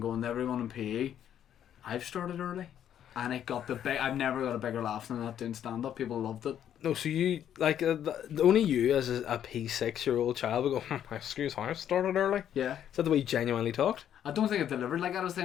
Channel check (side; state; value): right; quieter; 10.0 dB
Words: to everyone in PE, I've started early. And it got I've never got a bigger laugh than that doing stand up. People loved it. No, so you, like, only you as a P6-year-old child would go, excuse me, I started early? Yeah. Is that the way you genuinely talked? I don't think it delivered like that. I was